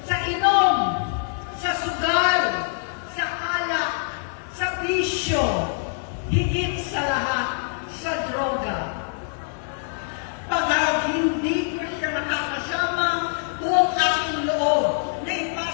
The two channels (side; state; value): right; silent; digital silence